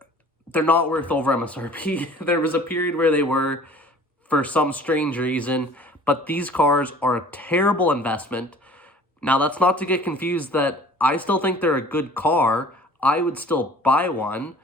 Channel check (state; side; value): normal; both; correlation 0.48